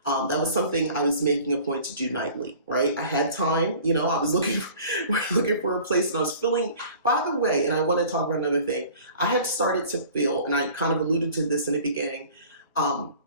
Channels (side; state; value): both; inverted; correlation -0.46